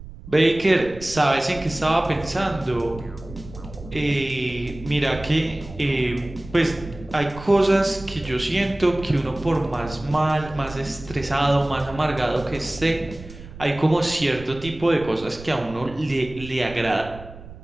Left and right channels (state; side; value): noise; right; rumble, 16 dB below the sound